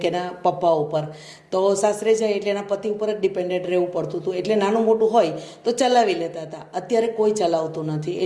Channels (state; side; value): identical; both; correlation 1.00